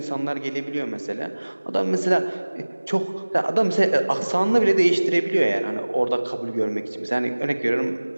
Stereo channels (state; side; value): inverted; both; correlation -1.00